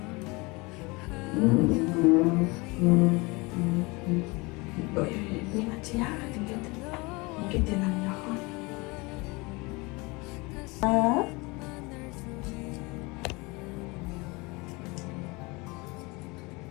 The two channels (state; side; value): quieter; right; 25.7 dB